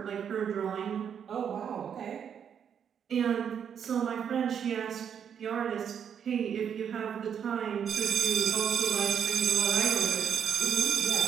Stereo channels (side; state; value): left; quieter; 8.0 dB